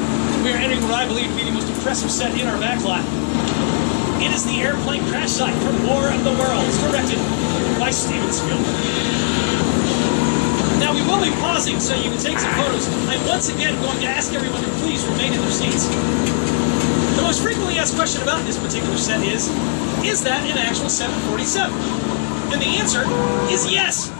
we are entering what I believe to be the most impressive set in our backlot. It is the airplane crash site from War of the Worlds, directed by Steven Spielberg. Now, we will be pausing so you can take some photos. I'm once again going to ask everyone to please remain in their seats. The most frequently asked question about this particular set is that an actual 747? And the answer is yes.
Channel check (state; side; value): silent; right; digital silence